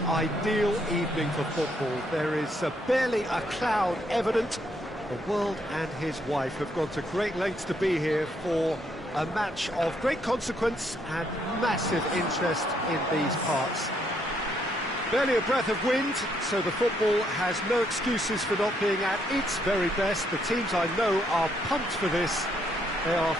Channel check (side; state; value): both; normal; correlation 0.73